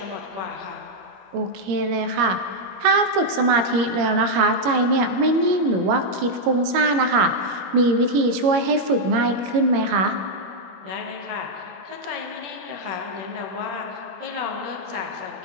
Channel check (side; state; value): left; late; 22 ms